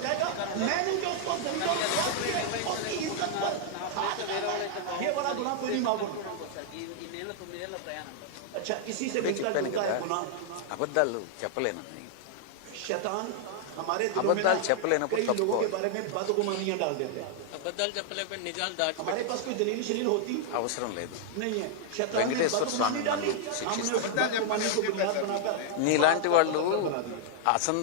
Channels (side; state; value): both; different; correlation -0.01